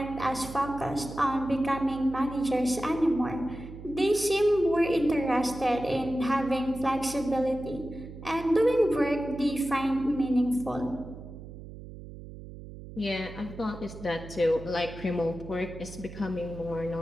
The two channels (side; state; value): right; noise; hum, 14 dB below the sound